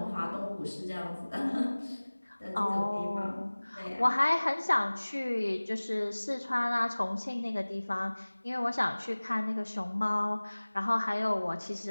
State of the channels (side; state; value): both; inverted; correlation -1.00